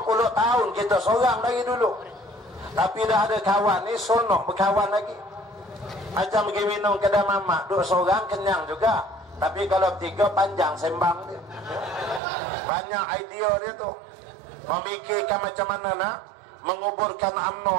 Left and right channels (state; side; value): drops out; left; at 12.2 s